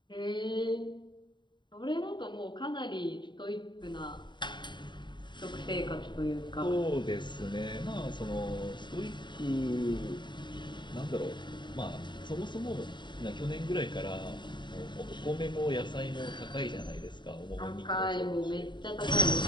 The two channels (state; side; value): late; right; 0.22 ms